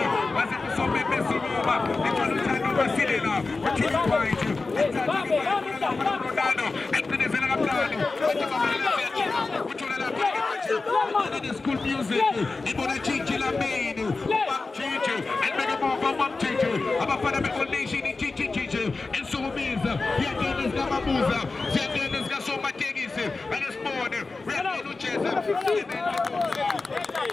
base kusombe besikuma ethola uthando basilela uthola point ethatha ke Ronaldo eqinezela kamnandi uthola lapha ke manje school music ibona Gigi Lamini Gigi elibeke mova Gigi abafana beOld Nation Gigi ensukumiza yangena zikamabuza ziyangena zikasomatekisi akesibone uyangena ujeza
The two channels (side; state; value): right; quieter; 3.8 dB